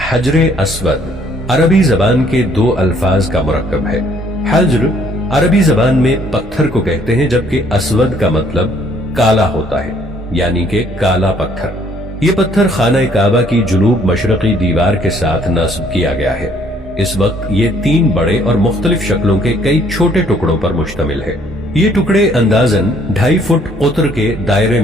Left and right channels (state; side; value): normal; both; correlation 0.63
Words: حجر اسود عربی زبان کے دو الفاظ کا مرکب ہے۔ حجر عربی زبان میں پتھر کو کہتے ہیں، جبکہ اسود کا مطلب کالا ہوتا ہے، یعنی کہ کالا پتھر۔ یہ پتھر خانہ کعبہ کی جنوب مشرقی دیوار کے ساتھ نصب کیا گیا ہے۔ اس وقت یہ 3 بڑے اور مختلف شکلوں کے کئی چھوٹے ٹکڑوں پر مشتمل ہے۔ یہ ٹکڑے اندازاً 2.5 فٹ قطر کے دائرے